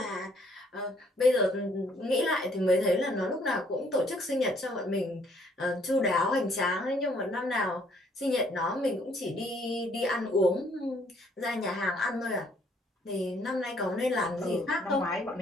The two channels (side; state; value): both; normal; correlation 0.64